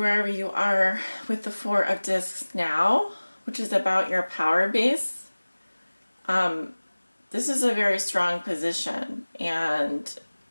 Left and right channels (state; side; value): inverted; both; correlation -1.00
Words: you are with the Four of Discs now, which is about your power base. This is a very strong position, and